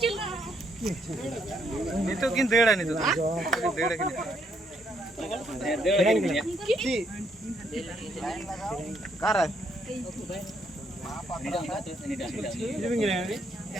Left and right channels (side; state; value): both; normal; correlation 0.72